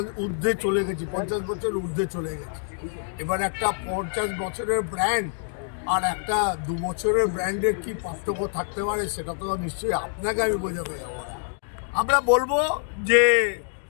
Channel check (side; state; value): right; silent; digital silence